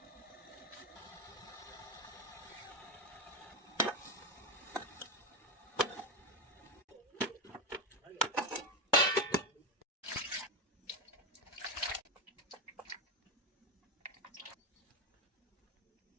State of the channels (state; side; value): normal; both; correlation 0.12